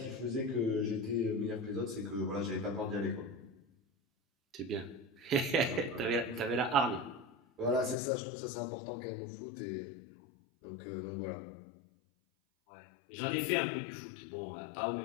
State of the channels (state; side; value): drops out; right; at 8.0 s